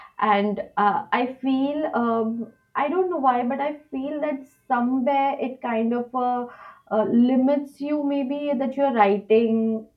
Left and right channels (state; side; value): identical; both; correlation 1.00